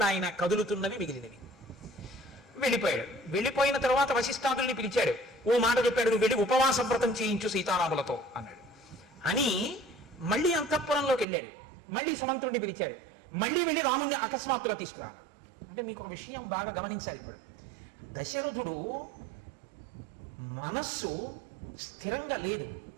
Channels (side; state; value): left; drops out; at 11.2 s